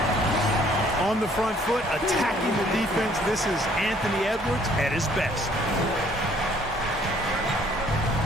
On the front foot, attacking the defense. This is Anthony Edwards at his best.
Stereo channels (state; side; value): normal; both; correlation 0.60